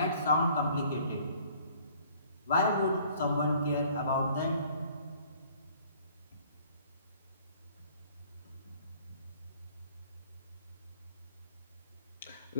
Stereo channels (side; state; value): both; inverted; correlation -0.56